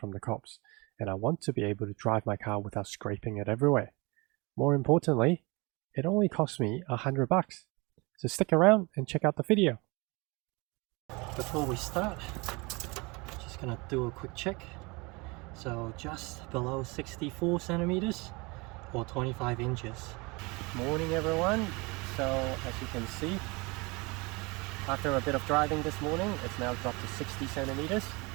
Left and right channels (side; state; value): left; quieter; 26.4 dB